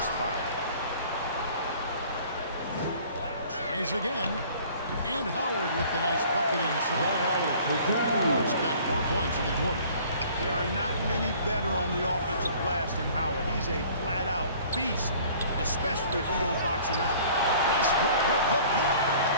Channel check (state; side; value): inverted; both; correlation -0.51